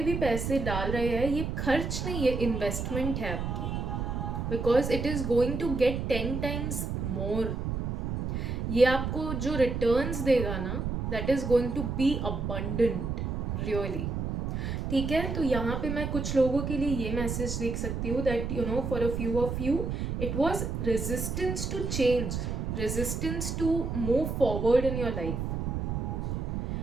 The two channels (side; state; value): right; noise; rumble, 2 dB below the sound